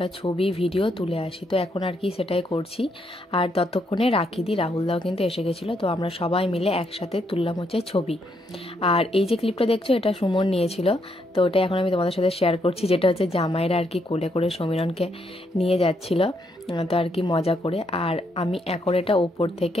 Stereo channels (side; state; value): both; normal; correlation 0.76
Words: ছবি ভিডিও তুলে আসি। তো এখন আর কি সেটাই করছি। আর ততক্ষণে রাখিদি রাহুলদাও কিন্তু এসে গেছিলো। তো আমরা সবাই মিলে একসাথে তুললাম হচ্ছে ছবি। আর এই যে ক্লিপটা দেখছো এটা সুমন নিয়েছিল, তো ওটা এখন আমি তোমাদের সাথে শেয়ার করছি, যেটা হচ্ছে জামাইরা আর কি কোলে করে সমীরণকে নিয়ে যাচ্ছিল, তো আর কি মজা করে। আর আমি এখন এটা ওপর